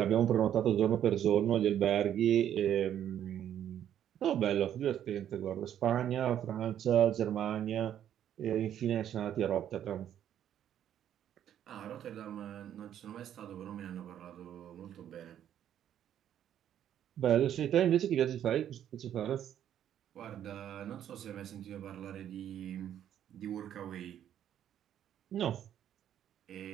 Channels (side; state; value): left; quieter; 10.4 dB